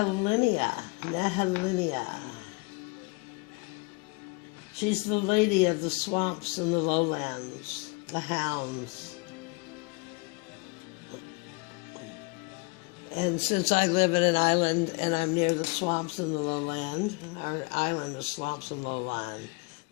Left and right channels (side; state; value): right; quieter; 28.5 dB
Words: She's the lady of the swamps and the lowlands, the hounds. And since I live in an island and I'm near the swamps and the lowland, our island is swamps and lowland,